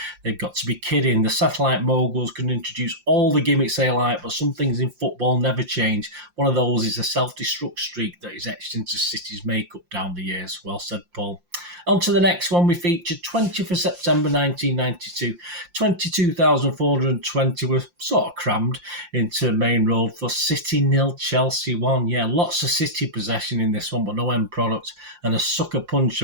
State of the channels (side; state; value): left; late; 5.7 ms